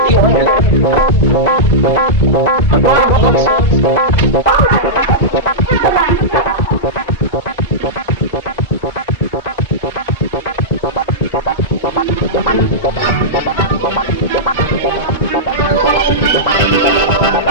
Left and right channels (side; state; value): both; normal; correlation -0.11